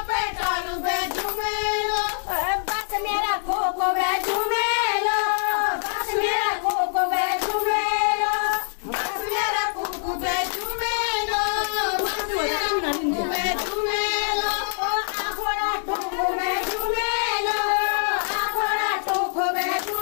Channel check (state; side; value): silent; right; digital silence